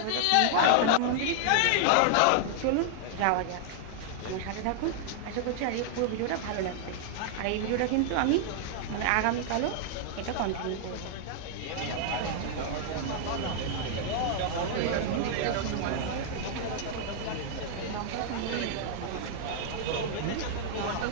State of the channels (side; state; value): both; different; correlation -0.01